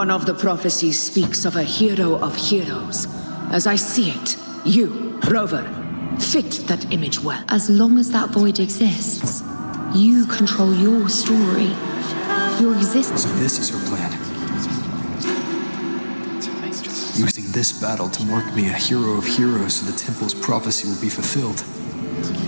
of the prophecies speaks of a hero of heroes. As I see it, you, Rover, fit that image well. As long as that void exists, you control your story, your existence. So this is her plan. Using this battle to mark me a hero of heroes so the temple's prophecy will be fulfilled.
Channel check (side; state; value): both; inverted; correlation -1.00